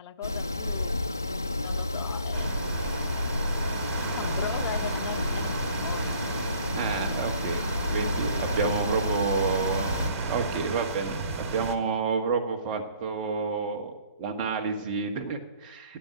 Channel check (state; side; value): inverted; both; correlation -0.56